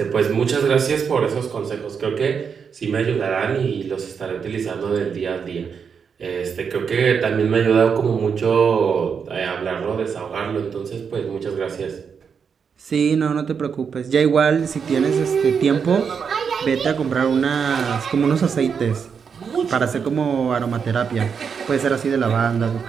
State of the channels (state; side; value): quieter; left; 6.4 dB